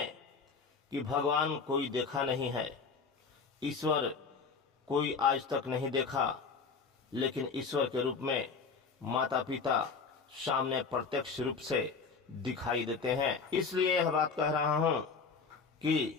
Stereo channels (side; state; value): right; quieter; 5.1 dB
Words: कि भगवान कोई देखा नहीं है, ईश्वर कोई आज तक नहीं देखा, लेकिन ईश्वर के रूप में माता पिता सामने प्रत्यक्ष रूप से दिखाई देते हैं। इसलिए यह बात कह रहा हूं